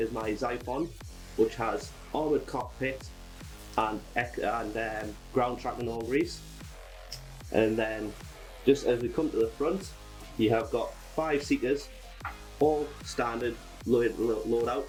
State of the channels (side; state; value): both; identical; correlation 1.00